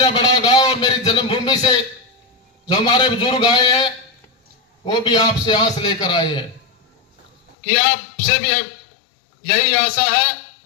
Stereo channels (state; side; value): drops out; right; at 7.6 s